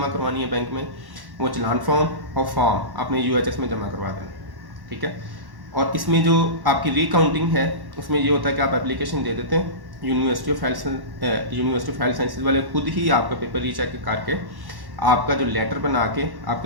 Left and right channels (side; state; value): left; late; 1.1 ms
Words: करवानी है बैंक में, वो चलान फॉर्म और फॉर्म आपने यूएचएस में जमा करवा देना है, ठीक है। और इसमें जो आपकी रीकाउंटिंग है उसमें ये होता है कि आप एप्लीकेशन दे देते हैं, यूनिवर्सिटी ऑफ हेल्थ साइंसेज वाले खुद ही आपका पेपर रीचेक करके आपका जो लेटर बना के